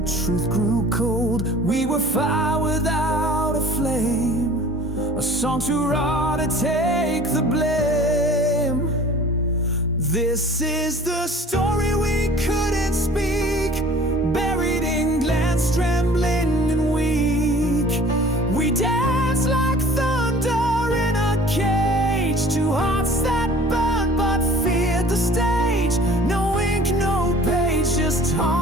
truth grew cold. We were fire without a flame, a song too raw to take the blame. This is the story we couldn't speak, buried in glance, trembling and weak. We danced like thunder in a cage, two hearts that burned but feared the stage. No ink, no page, just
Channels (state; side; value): normal; both; correlation 0.47